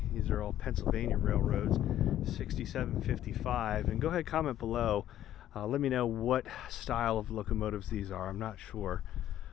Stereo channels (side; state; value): right; quieter; 12.1 dB